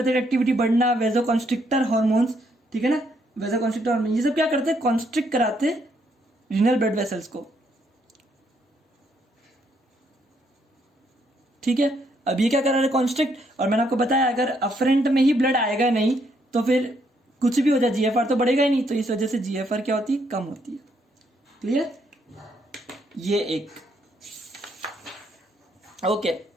एक्टिविटी बढ़ना, वेसोकंस्ट्रिक्टर हार्मोन्स, ठीक है ना, वेसोकंस्ट्रिक्टर हार्मोन, ये सब क्या करते हैं, कॉन्स्ट्रिक्ट कराते रीनल ब्लड वेसल्स को। ठीक है, अब ये क्या कर रहा है, कॉन्स्ट्रिक्ट, और मैंने आपको बताया अगर अफरेंट में ही ब्लड आएगा नहीं तो फिर कुछ भी हो जाए जीएफआर तो बढ़ेगा ही नहीं, तो इस वजह से जीएफआर क्या होती है, कम होती है। क्लियर, ये एक। ओके,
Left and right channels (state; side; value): normal; both; correlation 0.73